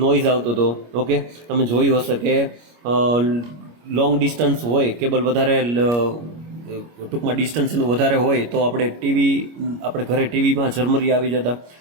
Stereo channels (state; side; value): late; left; 25 ms